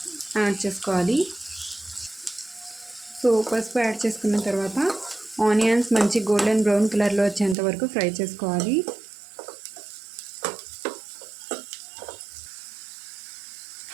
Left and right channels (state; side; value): drops out; left; at 7.6 s